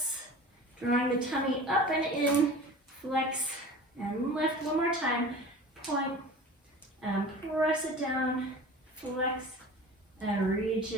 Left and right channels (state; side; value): normal; both; correlation 0.39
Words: drawing the tummy up and in, flex and lift. One more time. Point and press it down, flex and reach